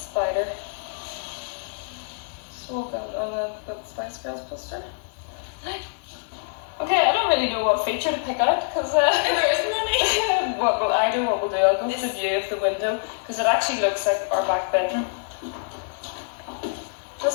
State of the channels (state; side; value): silent; right; digital silence